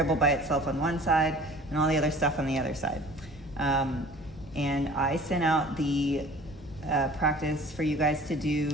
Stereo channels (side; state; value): both; normal; correlation 0.46